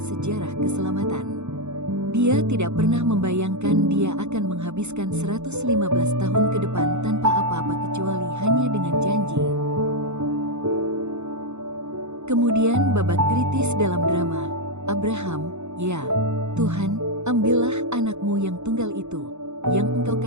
keselamatan. Dia tidak pernah membayangkan dia akan menghabiskan 115 tahun ke depan tanpa apa-apa kecuali hanya dengan janji. Kemudian babak kritis dalam drama, Abraham, ya, Tuhan, ambillah anakmu yang tunggal itu, yang Engkau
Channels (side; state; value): left; late; 0.82 ms